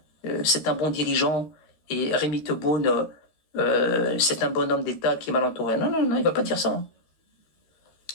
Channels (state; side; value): late; right; 13 ms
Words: c'est un bon dirigeant et Rémi Tebboune, c'est un bon homme d'État qui est mal entouré. Non, non, non, il va pas dire ça. Hein.